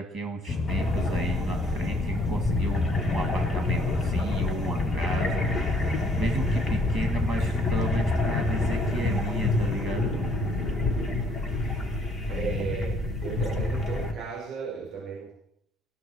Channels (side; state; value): both; normal; correlation 0.63